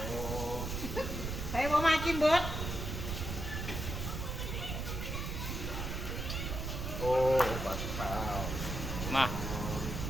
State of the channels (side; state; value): right; noise; rumble, 4 dB below the sound